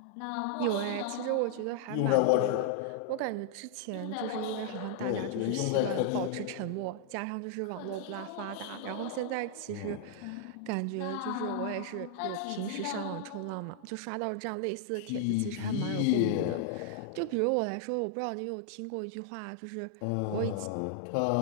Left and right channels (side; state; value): both; different; correlation 0.00